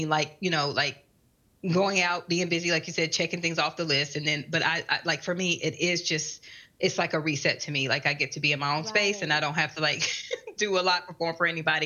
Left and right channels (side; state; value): both; identical; correlation 1.00